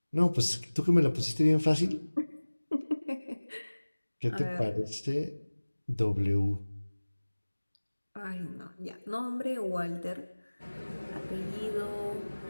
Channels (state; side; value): inverted; both; correlation -1.00